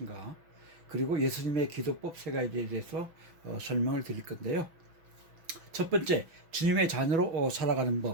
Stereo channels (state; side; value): late; left; 6.1 ms